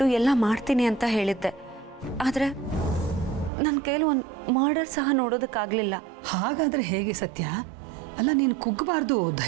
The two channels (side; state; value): left; drops out; at 3.5 s